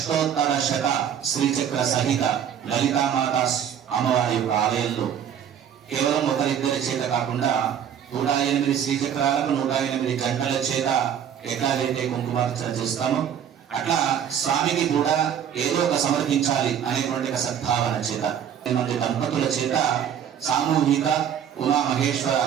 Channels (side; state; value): left; quieter; 9.0 dB